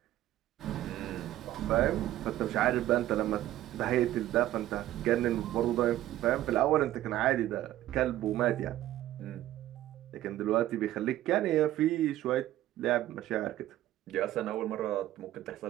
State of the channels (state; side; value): quieter; left; 14.1 dB